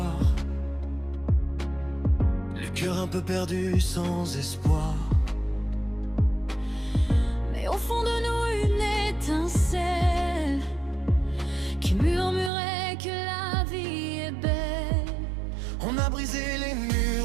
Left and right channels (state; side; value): drops out; left; at 12.5 s